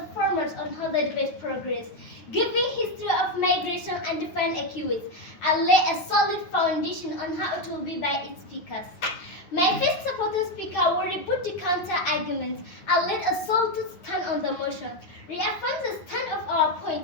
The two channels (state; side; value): late; right; 9.5 ms